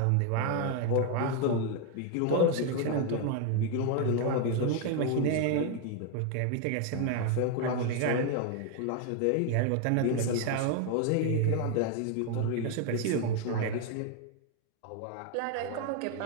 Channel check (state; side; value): different; both; correlation 0.01